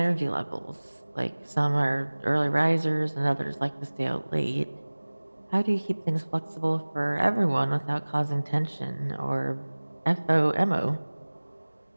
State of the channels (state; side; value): inverted; both; correlation -1.00